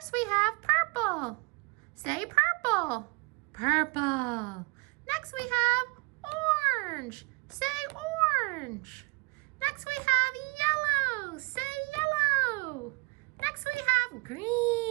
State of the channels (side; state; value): left; quieter; 29.6 dB